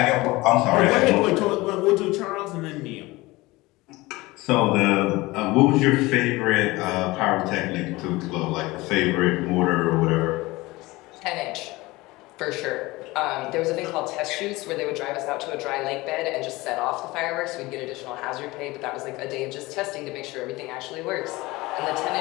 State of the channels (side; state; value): right; quieter; 20.9 dB